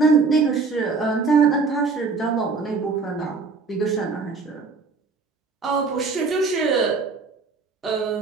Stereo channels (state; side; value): quieter; left; 4.4 dB